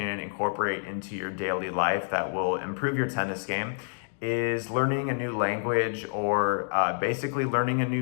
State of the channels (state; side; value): silent; right; digital silence